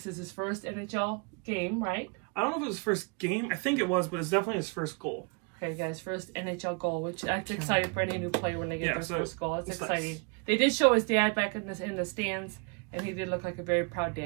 is his first NHL game, right? I don't know if it was his first game. I think it was, but it's definitely his first goal. Okay, guys, first NHL goal, which that's exciting for any new player when they get their first goal. It's exciting. Nice. They did show his dad back in the stands, and he did look like a very proud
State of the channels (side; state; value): left; quieter; 33.8 dB